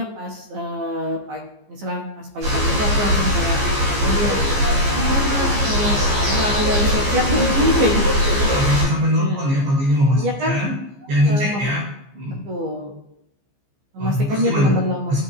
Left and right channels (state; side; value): late; left; 15 ms